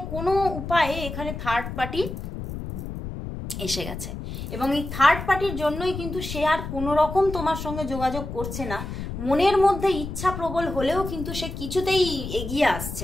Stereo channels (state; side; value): noise; left; rumble, 7 dB below the sound